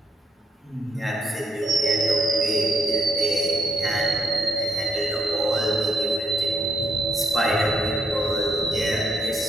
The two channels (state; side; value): normal; both; correlation 0.75